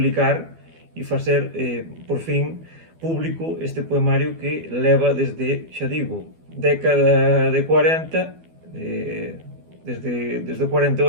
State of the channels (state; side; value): late; left; 12 ms